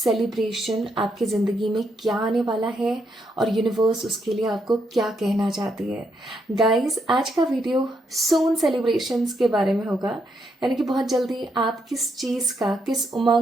आपकी ज़िंदगी में क्या आने वाला है और यूनिवर्स उसके लिए आपको क्या कहना चाहती है। गाइस, आज का वीडियो सून सेलिब्रेशंस के बारे में होगा, यानी कि बहुत जल्दी आप किस चीज़ का, किस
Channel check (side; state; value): both; normal; correlation 0.78